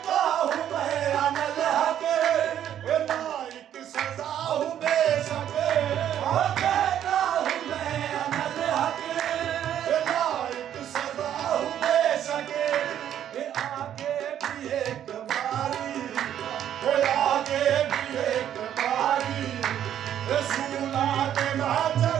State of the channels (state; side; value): quieter; left; 10.4 dB